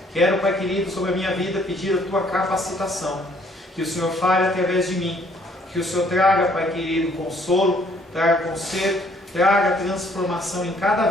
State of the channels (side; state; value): both; normal; correlation 0.63